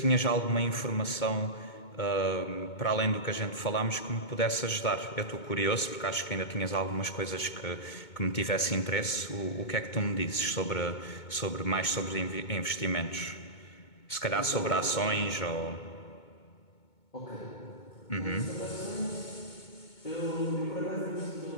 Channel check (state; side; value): late; right; 2.2 ms